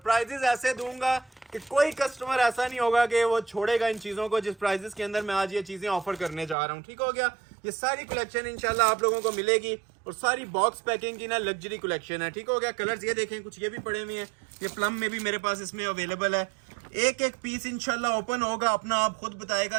ऐसे दूंगा कि कोई कस्टमर ऐसा नहीं होगा कि वो छोड़ेगा इन चीजों को जिस प्राइजेस के अंदर मैं आज ये चीजें ऑफर करने जा रहा हूँ। ठीक हो गया। ये सारी कलेक्शन इंशाल्लाह आप लोगों को मिलेगी और सारी बॉक्स पैकिंग की ना लग्जरी कलेक्शन है। ठीक हो गया। कलर्स ये देखें, कुछ ये भी पड़े हुए हैं, ये प्लम में भी मेरे पास इसमें अवेलेबल है। एक पीस इंशाल्लाह ओपन होगा, अपना आप खुद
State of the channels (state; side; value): drops out; left; at 6.6 s